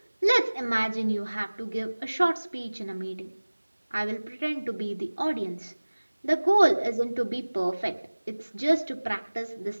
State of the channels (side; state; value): both; inverted; correlation -1.00